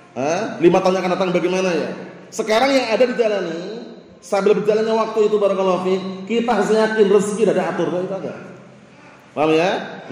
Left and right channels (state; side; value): identical; both; correlation 1.00